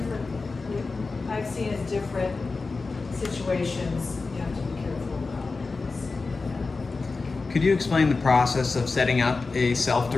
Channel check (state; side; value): quieter; right; 4.0 dB